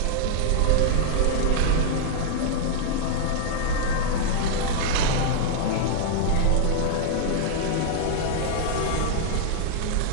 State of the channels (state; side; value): different; both; correlation -0.01